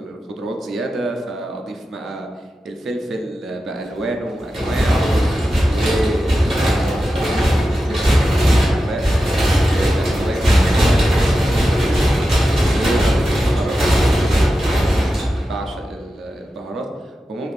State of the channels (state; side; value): normal; both; correlation 0.91